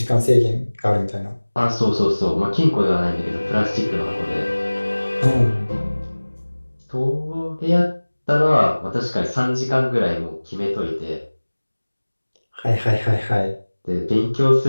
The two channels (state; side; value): inverted; both; correlation -1.00